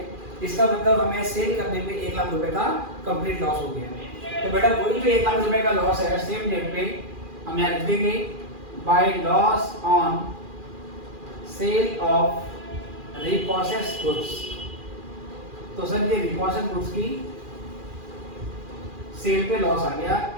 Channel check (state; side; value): late; left; 2.4 ms